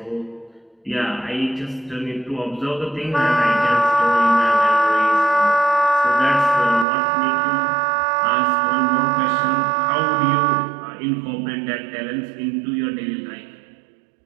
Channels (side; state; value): left; drops out; at 6.9 s